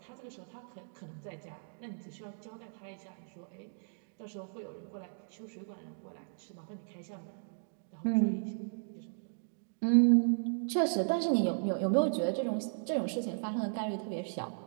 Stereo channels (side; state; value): left; silent; digital silence